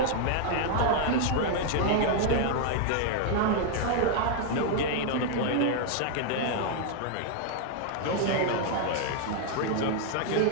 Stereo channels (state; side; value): different; both; correlation 0.00